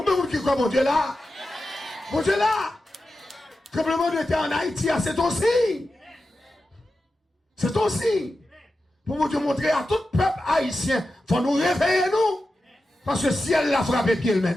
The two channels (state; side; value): normal; both; correlation 0.92